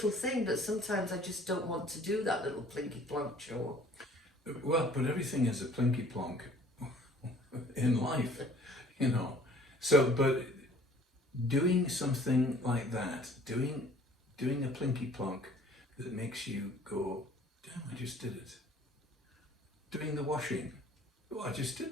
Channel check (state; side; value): normal; both; correlation 0.54